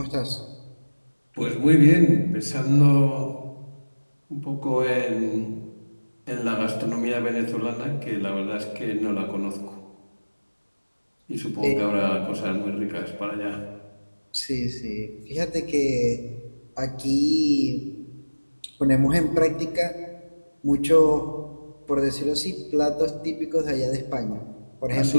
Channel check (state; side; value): inverted; both; correlation -1.00